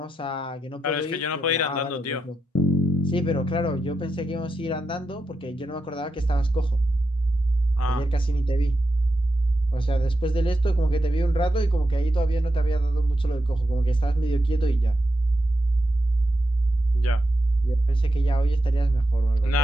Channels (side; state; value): both; normal; correlation 0.87